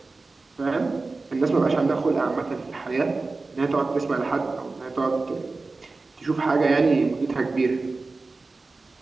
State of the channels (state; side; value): quieter; left; 3.7 dB